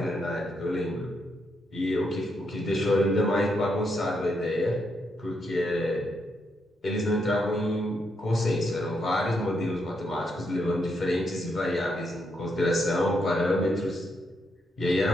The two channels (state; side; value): normal; both; correlation 0.79